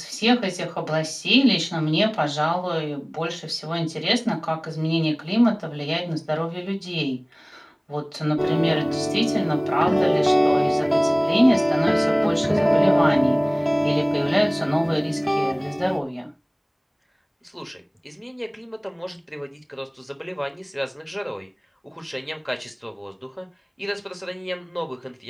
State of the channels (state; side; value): identical; both; correlation 1.00